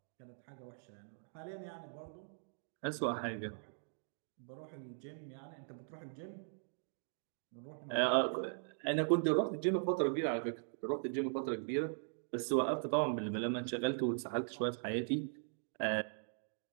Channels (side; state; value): left; silent; digital silence